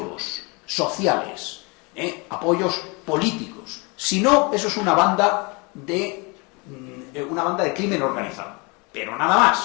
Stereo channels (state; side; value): quieter; right; 29.3 dB